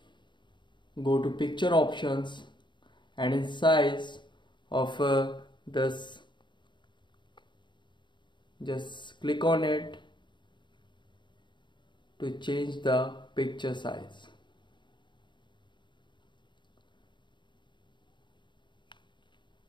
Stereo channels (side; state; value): right; late; 0.23 ms